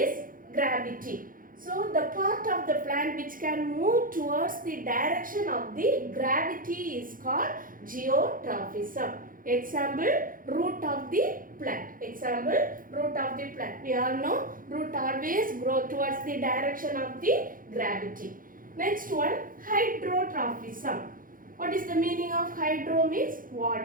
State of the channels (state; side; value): late; left; 0.40 ms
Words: gravity. So the part of the plant which can move towards the direction of the gravity is called geotrophism. Example, root of the plant. Example, root of the plant. We all know root always grow towards the direction of the gravity. Next one, hydrotrophism. What is the meaning of hydro means